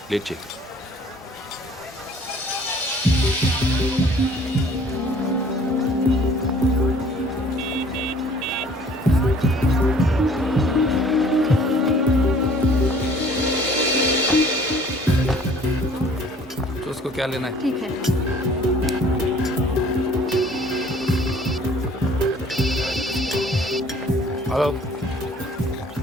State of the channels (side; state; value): both; normal; correlation 0.54